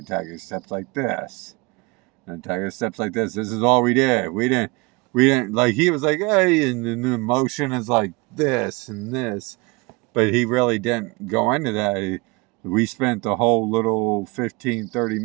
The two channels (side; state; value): left; quieter; 26.1 dB